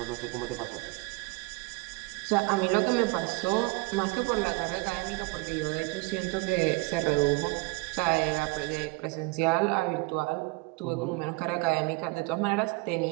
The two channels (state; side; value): quieter; left; 24.9 dB